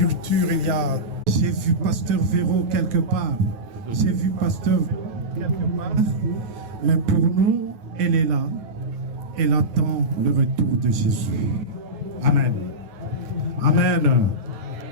il y a... J'ai vu Pasteur Véro quelque part. J'ai vu Pasteur quelque part. Mais pour nous, elle est là. Elle attend le retour de Jésus. Amen. Amen.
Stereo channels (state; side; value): late; left; 9.3 ms